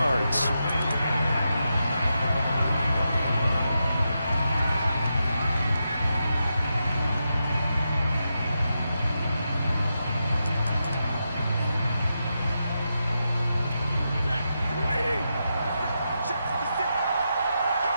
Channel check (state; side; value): inverted; both; correlation -0.86